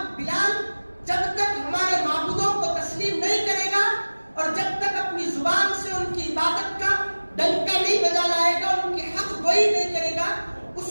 بلال، جب تک ہمارے معبودوں کو تسلیم نہیں کرے گا اور جب تک اپنی زبان سے ان کی عبادت کا ڈنکا نہیں بجا لائے گا، ان کی حق گوئی نہیں کرے گا، اس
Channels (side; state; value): both; inverted; correlation -1.00